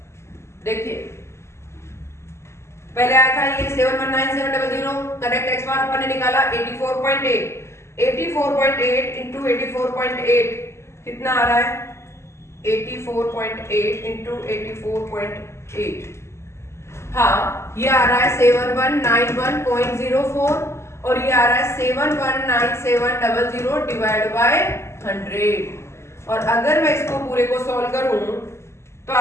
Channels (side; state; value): right; late; 0.13 ms